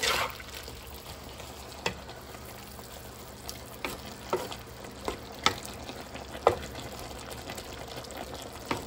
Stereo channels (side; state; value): both; identical; correlation 1.00